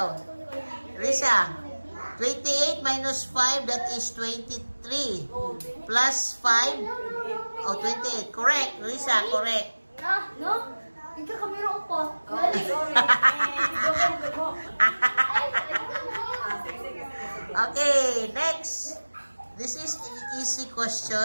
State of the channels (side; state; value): both; inverted; correlation -1.00